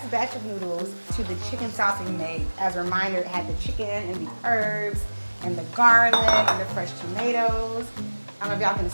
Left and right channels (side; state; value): both; inverted; correlation -1.00